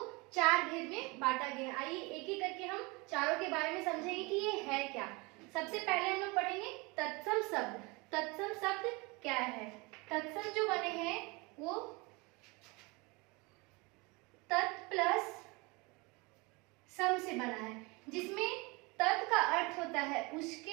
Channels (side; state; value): left; quieter; 26.7 dB